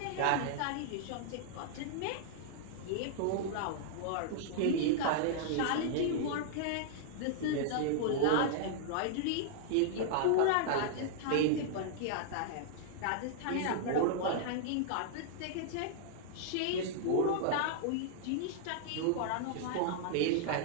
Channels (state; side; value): different; both; correlation -0.01